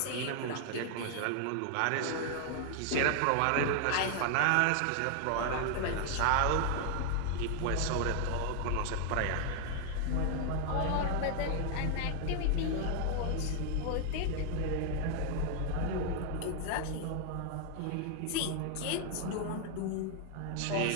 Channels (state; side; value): different; both; correlation 0.00